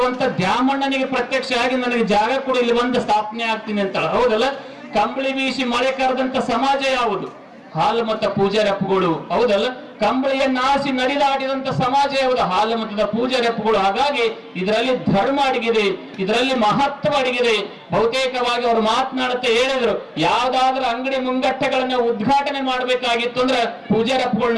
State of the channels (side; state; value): both; identical; correlation 1.00